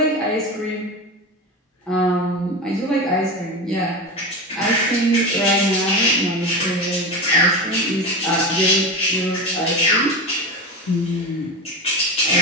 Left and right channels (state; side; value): normal; both; correlation 0.23